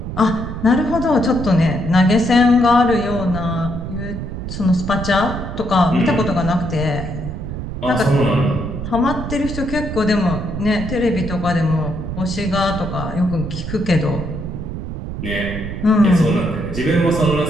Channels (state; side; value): noise; right; rumble, 7 dB below the sound